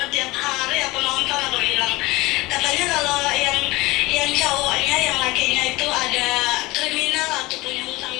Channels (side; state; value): right; quieter; 21.1 dB